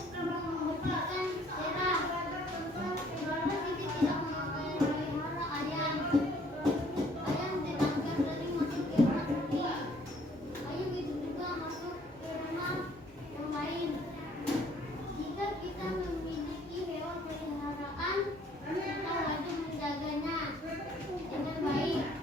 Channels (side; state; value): both; normal; correlation 0.61